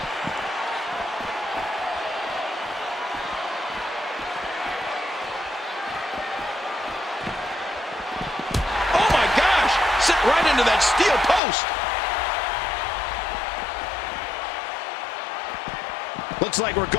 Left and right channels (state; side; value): drops out; right; at 11.4 s